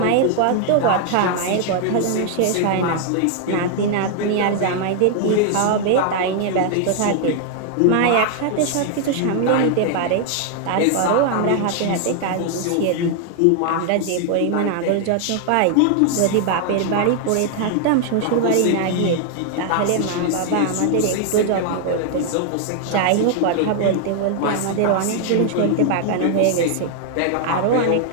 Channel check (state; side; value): different; both; correlation 0.00